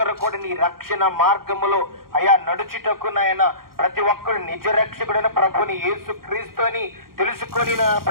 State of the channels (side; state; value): left; late; 0.92 ms